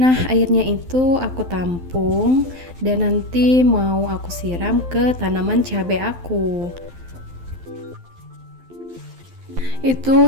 airnya itu aku tampung dan nanti mau aku siram ke tanaman cabai aku.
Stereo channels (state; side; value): late; left; 12 ms